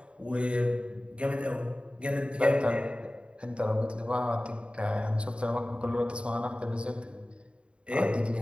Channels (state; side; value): late; left; 0.057 ms